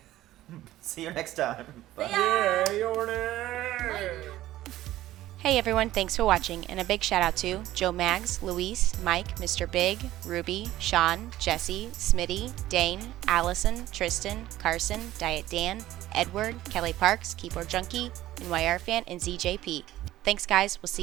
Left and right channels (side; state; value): left; quieter; 14.8 dB